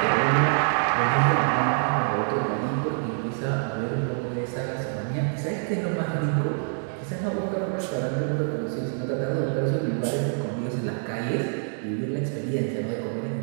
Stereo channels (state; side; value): silent; left; digital silence